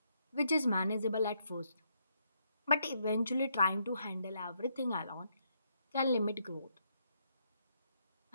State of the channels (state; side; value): inverted; both; correlation -0.76